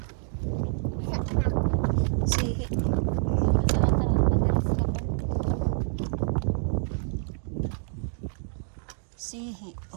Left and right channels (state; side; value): silent; left; 60 dB below the other